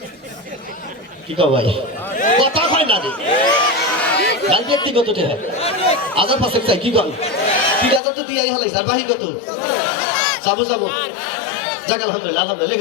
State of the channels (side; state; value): right; drops out; at 8.0 s